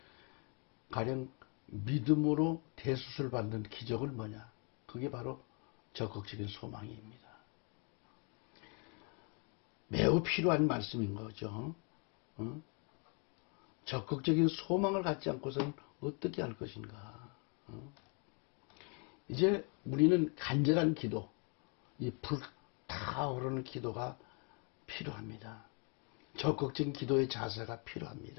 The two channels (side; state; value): right; quieter; 36.0 dB